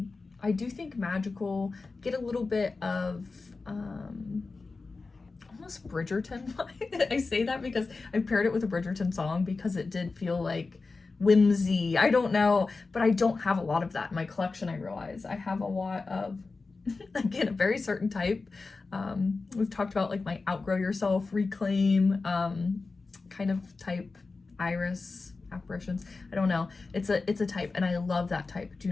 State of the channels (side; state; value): right; quieter; 3.9 dB